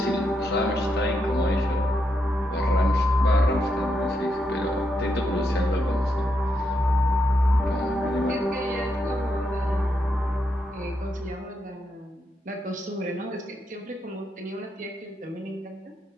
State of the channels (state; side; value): normal; both; correlation 0.81